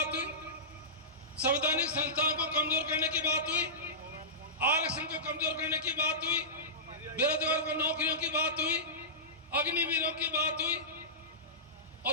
हुई, संवैधानिक संस्थानों को कमजोर करने की बात हुई, आरक्षण को कमजोर करने की बात हुई, बेरोजगार को नौकरियों की बात हुई, अग्निवीरों की बात हुई।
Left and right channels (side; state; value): both; normal; correlation -0.18